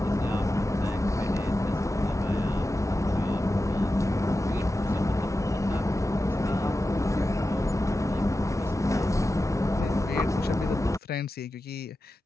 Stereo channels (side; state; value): both; normal; correlation 0.92